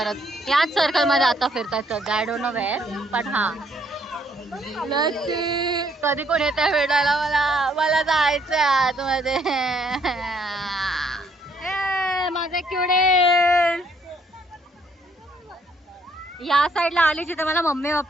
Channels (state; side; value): normal; both; correlation 0.68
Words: याच सर्कल मध्ये आता फिरतात सध्या. आय डोंट नो वेअर पण हा कधी कोण येत आहे भेटायला मला. मला जायचंय आतमध्ये. माझे किवडे या साईडला आली जिथे मला मम्मी